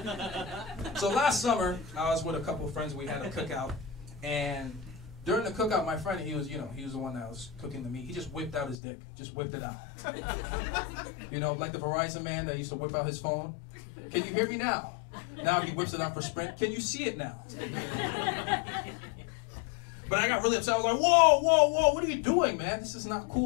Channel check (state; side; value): drops out; right; at 8.8 s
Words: So last summer, I was with a couple of friends. We had a cookout, and during the cookout, my friend, he was the one that was cooking the meat. He just whipped out his dick, just whipped it out. Like the Verizon man that used to whip out his phone. Can you hear me now? Now he whips it out for Sprint. Can you see it now? But I got really upset. I was like, whoa, whoa, whoa, what are you doing, man? This is not